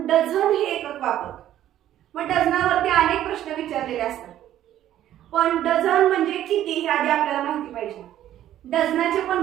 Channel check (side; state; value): left; quieter; 12.2 dB